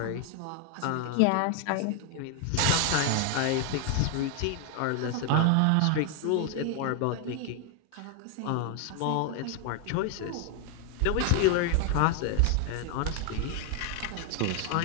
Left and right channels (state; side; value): different; both; correlation 0.00